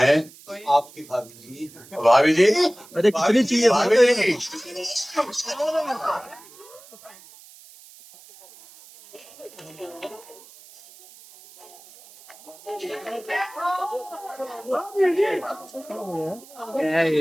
आपकी भाभी जी। भाभी जी, अरे कितनी चाहिए भाभी जी।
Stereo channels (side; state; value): right; noise; hiss, 22 dB below the sound